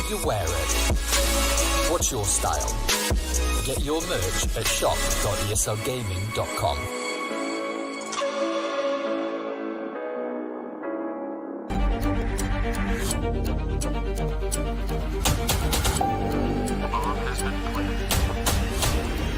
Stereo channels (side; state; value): both; identical; correlation 1.00